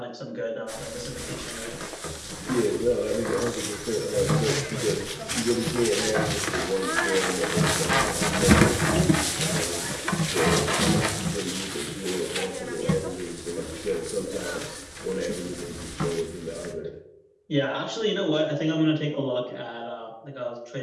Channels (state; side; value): identical; both; correlation 1.00